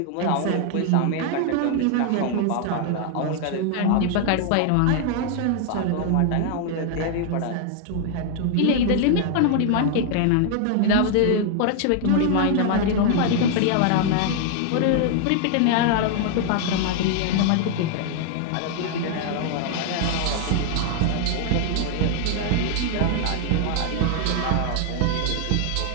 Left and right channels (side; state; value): both; different; correlation 0.00